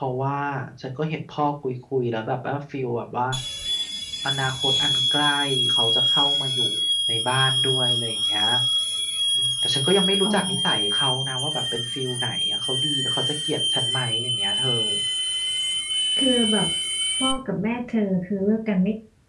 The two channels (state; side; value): identical; both; correlation 1.00